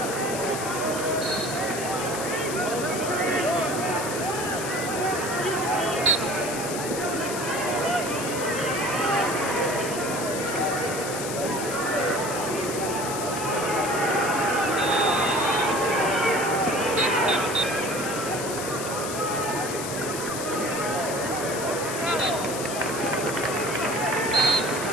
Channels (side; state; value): left; noise; hiss, 7 dB below the sound